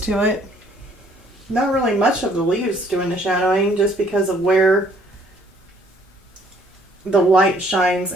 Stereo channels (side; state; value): both; normal; correlation 0.62